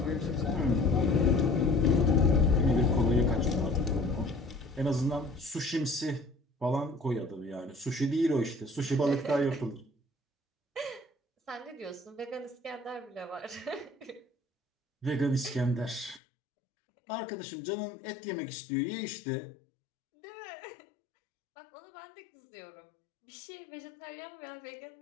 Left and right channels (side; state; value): right; drops out; at 16.2 s